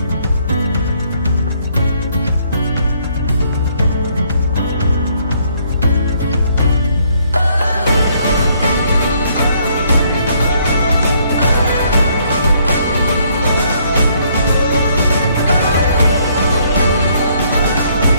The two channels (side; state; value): both; inverted; correlation -0.67